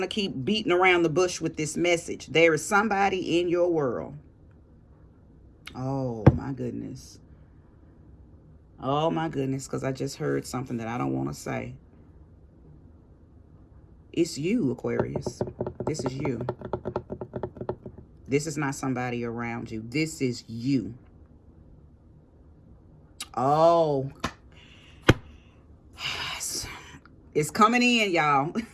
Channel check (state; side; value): identical; both; correlation 1.00